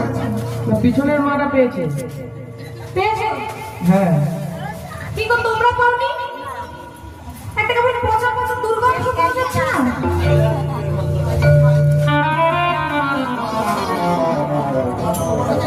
না। পিছনের মাটা পেয়েছে। পেয়েছো? হ্যাঁ। কি গো তোমরা পাওনি? একটা কেমন পচা পচা দুর্গন্ধ পাওয়া যাচ্ছে না?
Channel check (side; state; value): both; identical; correlation 1.00